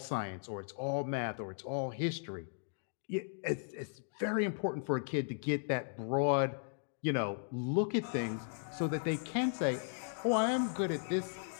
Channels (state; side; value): silent; right; digital silence